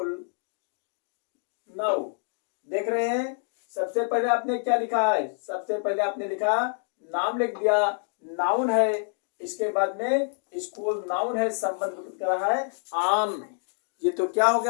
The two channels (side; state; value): right; silent; digital silence